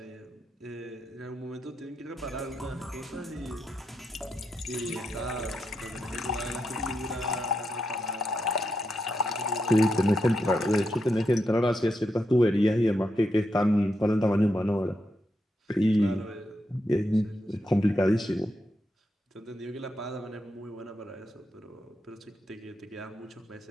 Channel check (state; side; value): normal; both; correlation 0.84